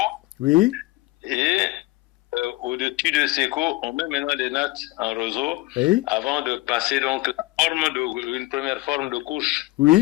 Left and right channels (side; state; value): right; quieter; 19.7 dB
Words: Oui. Et au-dessus de sécos, on met maintenant des nattes en roseau. Oui. Avant de passer donc une première forme de couche.